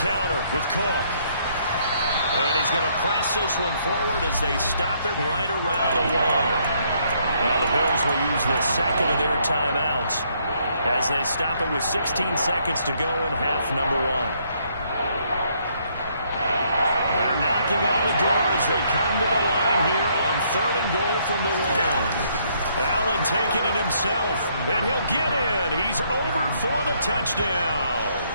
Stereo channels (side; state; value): both; inverted; correlation -0.69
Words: counter with Cook. And he's going to press this one forward as they stop him right around the line. Now the Bills will use the second of their timeouts as they stop it with 16 seconds to go in half number 1. They're knocking on the door as they come to the line here on third and goal from the 1. Allen taking it himself, and he'll get in. He's over for the touchdown.